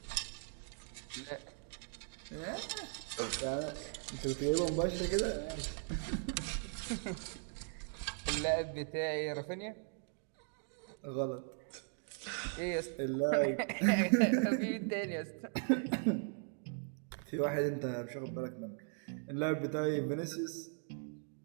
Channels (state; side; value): silent; left; 52 dB below the other